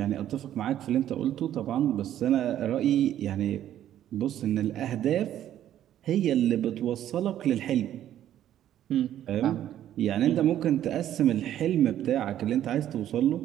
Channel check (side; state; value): left; quieter; 11.6 dB